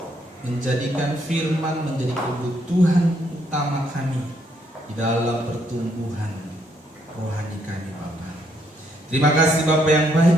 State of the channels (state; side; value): normal; both; correlation 0.72